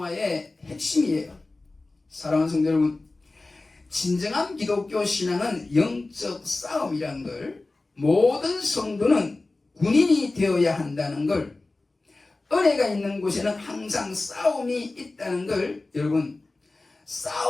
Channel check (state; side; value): quieter; right; 3.2 dB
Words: 핵심이에요. 사랑하는 성도 여러분, 진정한 기독교 신앙은 영적 싸움이라는 걸, 모든 성도는 군인이 되어야 한다는 걸, 은혜가 있는 곳에는 항상 싸움이 있다는 걸, 여러분,